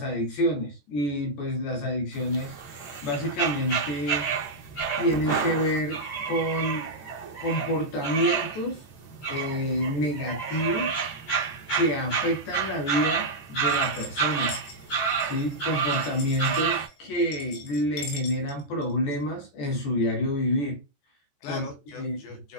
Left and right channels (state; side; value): late; right; 14 ms